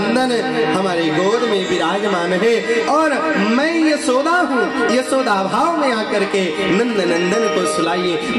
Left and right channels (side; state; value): both; identical; correlation 1.00